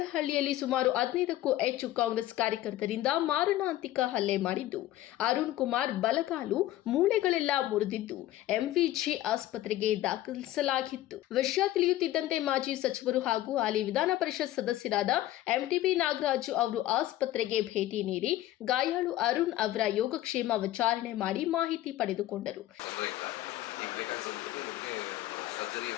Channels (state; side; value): quieter; right; 14.5 dB